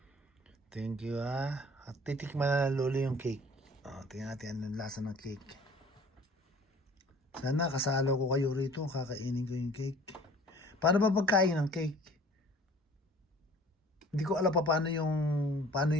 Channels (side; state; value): both; normal; correlation 0.50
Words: Thank you, At titikman na ng lolo yung cake. Tingnan natin anong lasa ng cake. Sana kasalo ko kayo rito, kakainin ko yung cake. Paano ba pagkain ng cake? Hindi ko alam pa paano yung